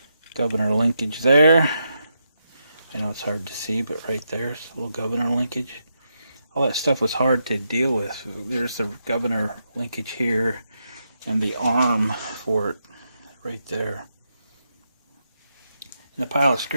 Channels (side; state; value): both; inverted; correlation -0.83